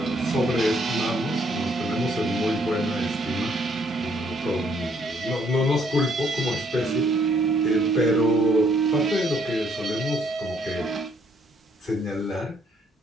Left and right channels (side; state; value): both; normal; correlation 0.68